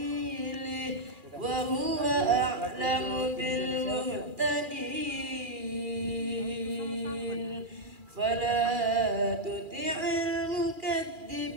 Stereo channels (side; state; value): left; late; 2.3 ms